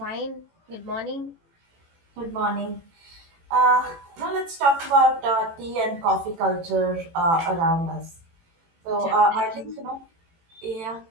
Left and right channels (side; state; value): left; late; 18 ms